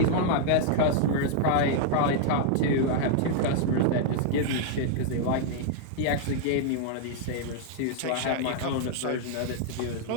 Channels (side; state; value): both; different; correlation -0.01